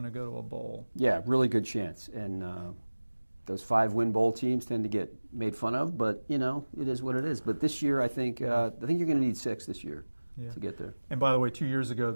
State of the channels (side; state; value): both; inverted; correlation -1.00